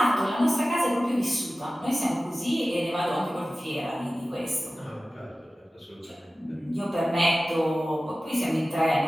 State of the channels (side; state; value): both; normal; correlation 0.96